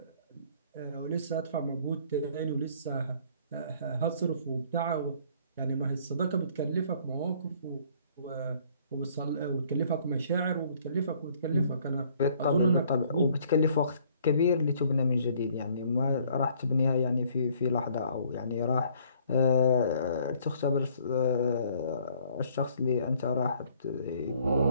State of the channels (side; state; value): both; inverted; correlation -0.60